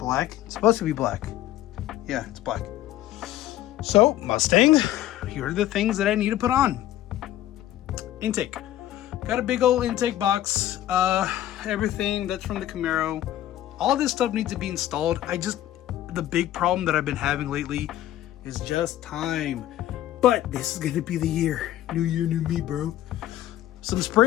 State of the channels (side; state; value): right; quieter; 13.4 dB